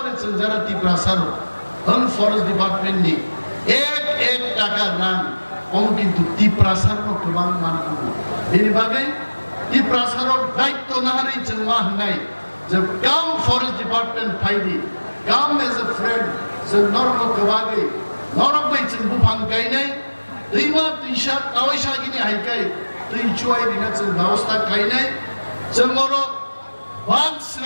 যারা ত্রিপুরা সারো ফরেস্ট ডিপার্টমেন্ট নি এক টাকা রান কম কিন্তু ত্রিপ্রাসারও গোबां मानगौ बेनि बागै ত্রিপ্রাসারও দায়িত্ব না হারি जों मा होननाय যে কাম ফরেস্ট ডিপার্টমেন্ট ফাইদি কাম এজ এ ফ্রেন্ড जों नरमखौ बागै नरमै जों बुफां गायनाय दैमा दैसा दावैसागिनि हायखाय दै जुवायरिना जों व्यवस्था गायनाय जों अरो बांध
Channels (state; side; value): inverted; both; correlation -1.00